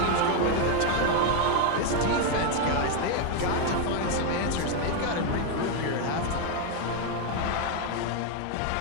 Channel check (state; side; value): different; both; correlation 0.01